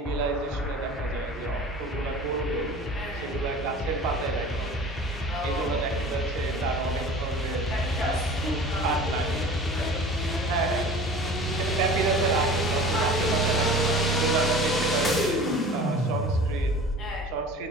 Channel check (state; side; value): normal; both; correlation 0.41